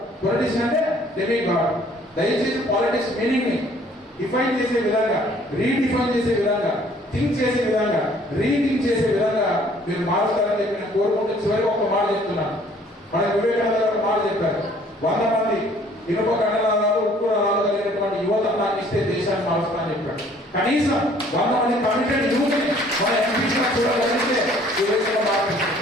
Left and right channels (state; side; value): normal; both; correlation 0.57